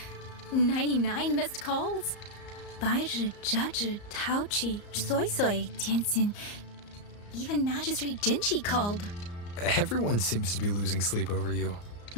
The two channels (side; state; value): right; late; 34 ms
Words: 99 missed calls? 白日折纸陶器soy soy tianxin. Even Magistrate Jinchi called. Everyone seems to be losing sleep over you.